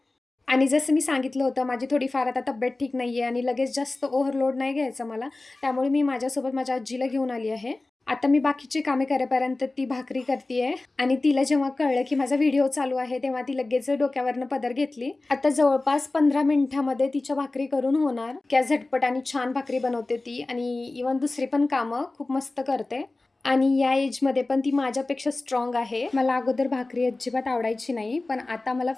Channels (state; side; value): quieter; right; 3.1 dB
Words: आणि जसं मी सांगितलं होतं माझी थोडीफार आता तब्येत ठीक नाही आहे आणि लगेच जास्त ओव्हरलोड नाही घ्यायचा मला. त्यामुळे मी माझ्यासोबत माझ्या आजीला घेऊन आली आहे. आता मी बाकीची कामे करेपर्यंत ती भाकरी करतीये आणि तिला जेव्हा कळलं की माझा व्हिडिओ चालू आहे तेव्हा ती लगेच डोक्यावरनं पदर घेतली. आता जवळपास 15 मिनिटामध्ये तिच्या भाकरी करून होणार. क्या झटपट आणि छान भाकरी बनवते ती आणि इव्हन दुसरी पण कामं खूप मस्त करते. आणि या एजमध्ये पण ती माझ्यापेक्षा स्ट्रॉंग आहे. मला अगोदर भाकरी अजिबात आवडायची नाही, पण आता मला